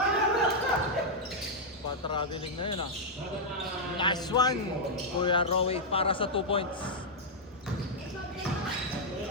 Pa-traveling na yun ah. Nice one! Kuya Rowie para sa 2 points.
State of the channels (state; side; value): normal; both; correlation -0.05